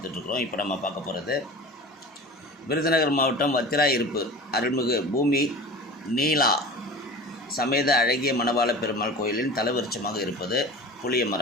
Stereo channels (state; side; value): normal; both; correlation 0.37